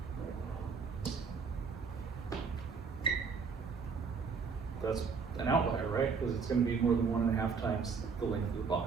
that's an outlier, right? Because it's going to be more than 1.5 times the length of the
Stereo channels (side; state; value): left; quieter; 5.4 dB